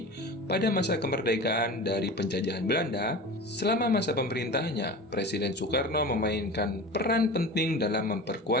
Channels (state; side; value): normal; both; correlation 0.33